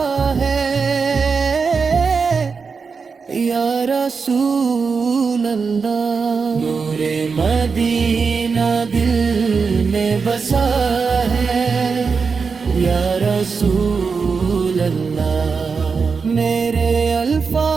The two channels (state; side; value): quieter; left; 5.2 dB